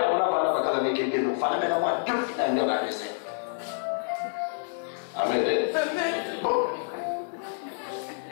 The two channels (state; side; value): silent; right; digital silence